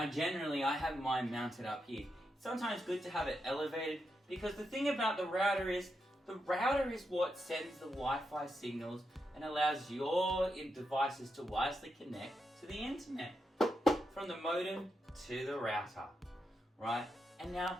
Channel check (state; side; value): normal; both; correlation 0.85